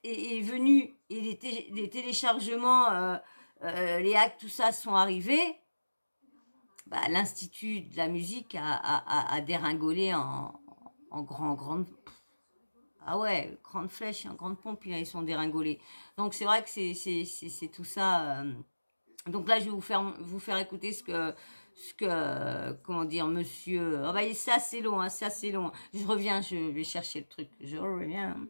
est venu et les téléchargements, les hacks, tout ça sont arrivés, bah, l'Institut de la musique a déringolé en grande. Ah ouais, grande flèche, grande pompe, ils sont déringolés. Donc c'est vrai que c'est tout ça. Donc là, je vais vous faire écouter ce que comment dire, monsieur. Ah bah c'est assez long, hein, c'est assez long. Je reviens, je vais chercher le truc. Je reviens.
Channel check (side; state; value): both; inverted; correlation -1.00